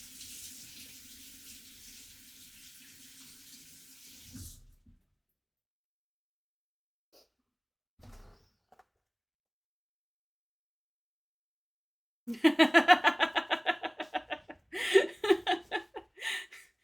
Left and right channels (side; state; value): both; identical; correlation 1.00